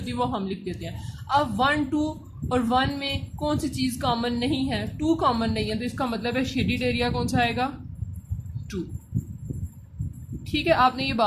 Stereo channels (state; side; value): identical; both; correlation 1.00